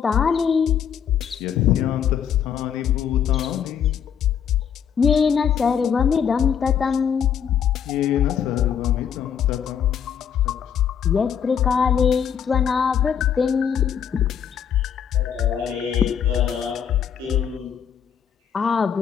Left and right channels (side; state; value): right; quieter; 8.1 dB